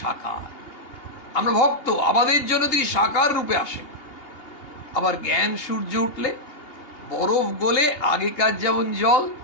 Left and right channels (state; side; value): late; right; 2.8 ms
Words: সাকার। আমরা ভক্ত, আমাদের জন্য তিনি সাকার রূপে আসেন। আবার জ্ঞান সূর্য উঠলে বরফ গলে আগেকার যেমন জল,